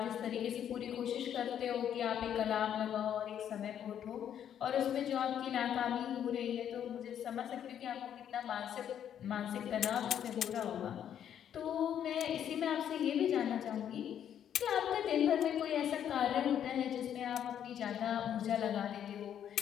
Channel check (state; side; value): quieter; right; 9.6 dB